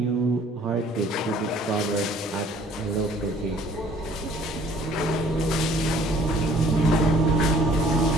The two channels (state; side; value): normal; both; correlation 0.57